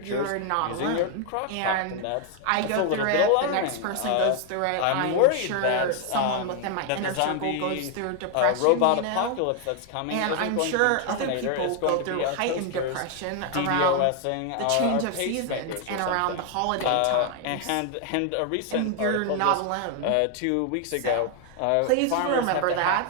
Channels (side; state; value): both; different; correlation 0.00